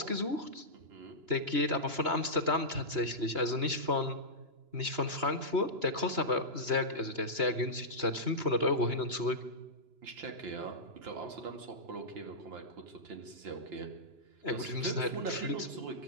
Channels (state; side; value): late; left; 2.9 ms